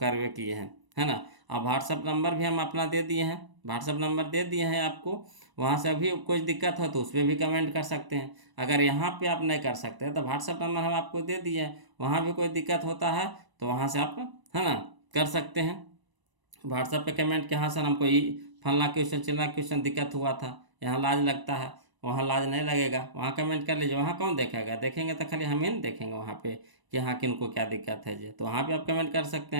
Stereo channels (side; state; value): left; late; 1.0 ms